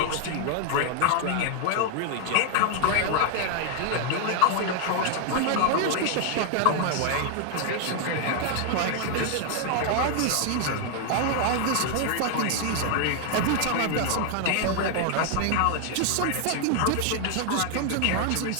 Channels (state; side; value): different; both; correlation 0.00